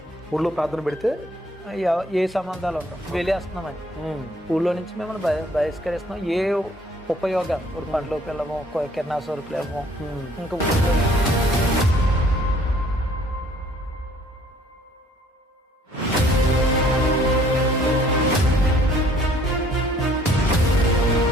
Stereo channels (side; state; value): both; normal; correlation 0.59